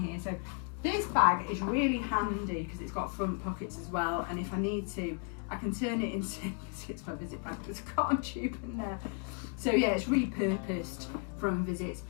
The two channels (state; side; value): quieter; right; 38.9 dB